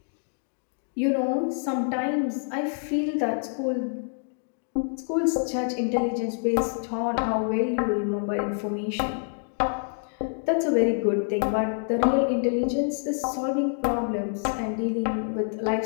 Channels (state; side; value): silent; right; 60 dB below the other